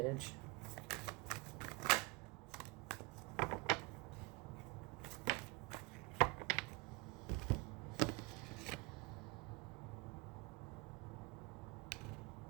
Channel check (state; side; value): quieter; left; 25.6 dB